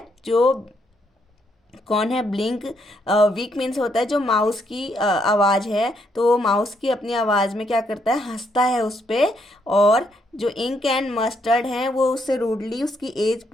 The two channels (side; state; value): both; normal; correlation 0.74